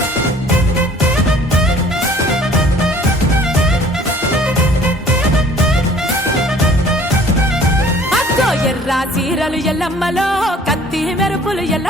ఎర్ర చీరలు ఎల్లమ్మలో కత్తి మెరుపులు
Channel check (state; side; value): normal; both; correlation 0.53